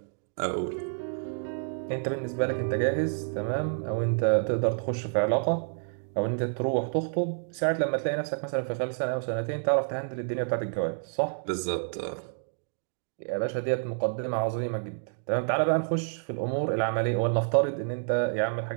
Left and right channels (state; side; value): silent; left; digital silence